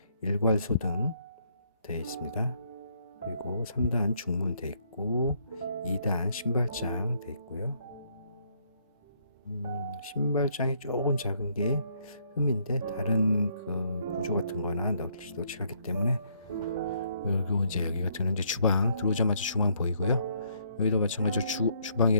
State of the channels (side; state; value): both; inverted; correlation -0.69